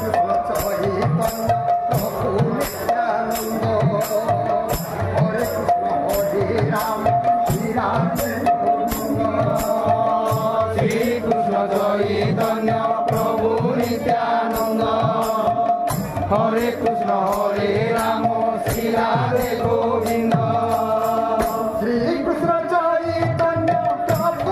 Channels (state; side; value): identical; both; correlation 1.00